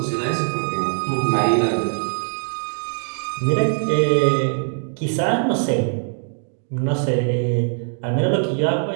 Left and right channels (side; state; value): left; silent; 64 dB below the other